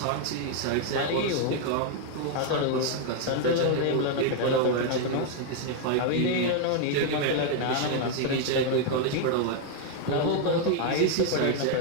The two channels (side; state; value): both; different; correlation 0.00